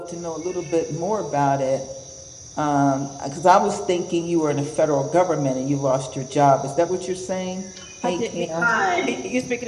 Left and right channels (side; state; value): both; identical; correlation 1.00